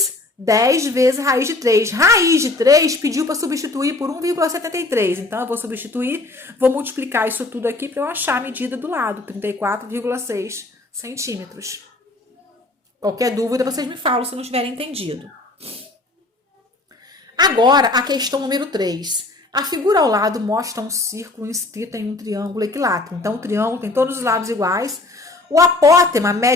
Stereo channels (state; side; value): quieter; right; 3.1 dB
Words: 10 vezes raiz de 3. Raiz de 3 pediu para substituir por 1,73. Então, eu vou substituir, vou multiplicar isso tudo aqui para eu achar a medida do lado, 34,6 centímetros. Qualquer dúvida, vocês me falam se não tiverem entendido. Agora, a questão número 3. A figura ao lado mostra um círculo inscrito em um triângulo equilátero. Então, o triângulo tem todos os lados iguais. O apótema